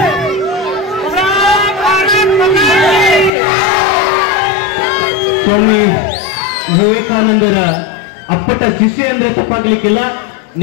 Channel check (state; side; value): drops out; right; at 3.3 s